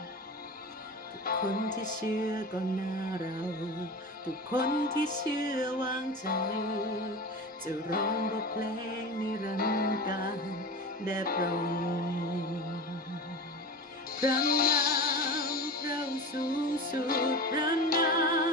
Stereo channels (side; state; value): both; normal; correlation 0.29